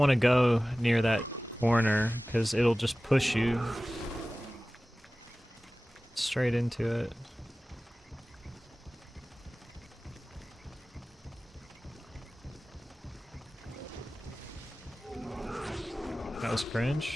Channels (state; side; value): normal; both; correlation 0.97